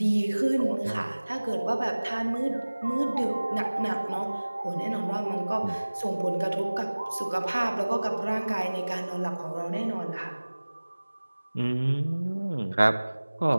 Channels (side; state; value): both; inverted; correlation -1.00